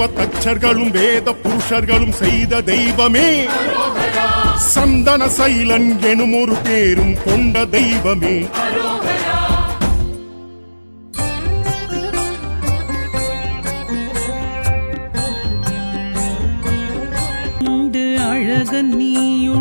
தச்சர்களும் வேத புருஷர்களும் செய்த தெய்வமே அரோகரா சந்தன சைலன் எனும் ஒரு பேரும் கொண்ட தெய்வமே அரோகரா உண்டு அழகன்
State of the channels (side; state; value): both; inverted; correlation -1.00